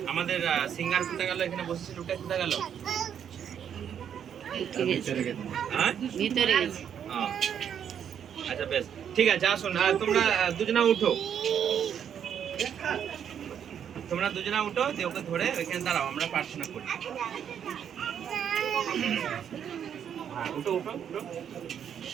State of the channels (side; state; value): left; quieter; 8.6 dB